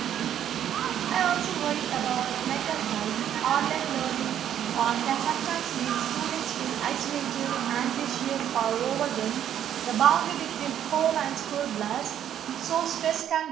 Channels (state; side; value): quieter; left; 10.2 dB